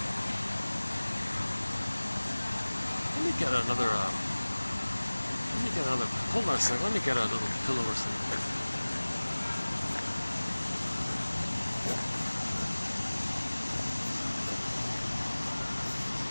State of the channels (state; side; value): inverted; both; correlation -1.00